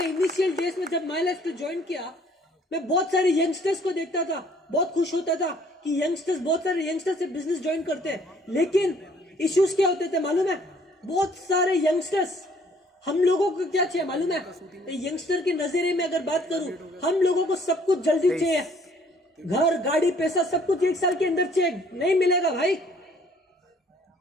इनिशियल डेज में जब माई लाइफस्टाइल ज्वाइन किया, मैं बहुत सारे यंगस्टर्स को देखता था, बहुत खुश होता था कि यंगस्टर्स, बहुत सारे यंगस्टर्स से बिजनेस ज्वाइन करते हैं। लेकिन इश्यूज क्या होते थे मालूम है? बहुत सारे यंगस्टर्स, हम लोगों को क्या चाहिए मालूम है? यंगस्टर के नजरिए में अगर बात करूं, हम लोगों को सब कुछ जल्दी चाहिए, घर, गाड़ी, पैसा, सब कुछ 1 साल के अंदर चाहिए। नहीं मिलेगा भाई।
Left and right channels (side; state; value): both; normal; correlation 0.60